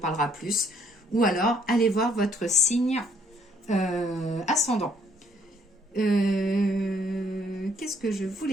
plus. Ou alors, allez voir votre signe ascendant. Qu'est-ce que je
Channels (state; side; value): normal; both; correlation 0.65